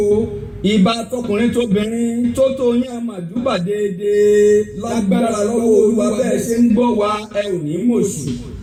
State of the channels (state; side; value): identical; both; correlation 1.00